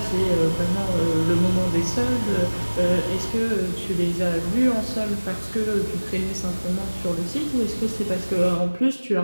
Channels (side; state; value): both; inverted; correlation -1.00